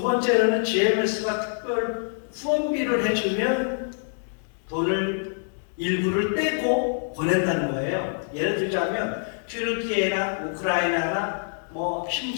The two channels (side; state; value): right; silent; digital silence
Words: 번째로는 GMS가 특별 후원비를 해주면 돈을 일부를 떼고 보낸다는 거예요. 예를 들자면 튀르키예나 우크라이나나